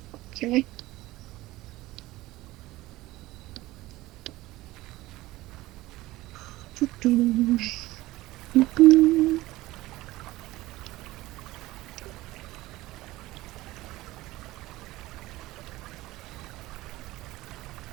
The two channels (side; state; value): left; quieter; 18.0 dB